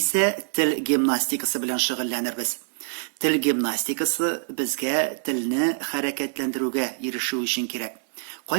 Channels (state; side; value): silent; left; digital silence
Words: тел гимнастикасы белән шөгыльләнербез. Тел гимнастикасы безгә телне хәрәкәтләндерүгә ирешү өчен кирәк.